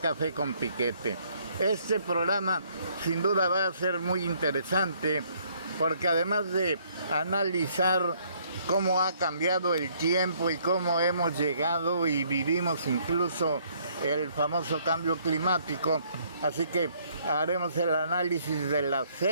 Café con Piquete. Este programa sin duda va a ser muy interesante porque además de analizar cómo ha cambiado el tiempo y cómo hemos llegado y vivimos incluso el famoso cambio climático, así que haremos el análisis de las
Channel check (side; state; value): both; inverted; correlation -0.65